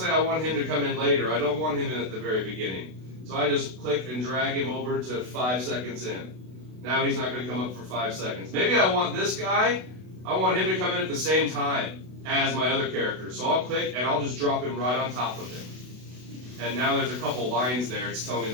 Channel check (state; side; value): late; left; 32 ms